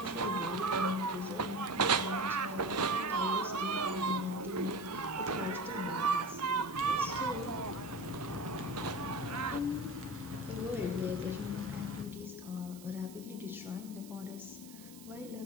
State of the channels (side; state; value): right; noise; hiss, 18 dB below the sound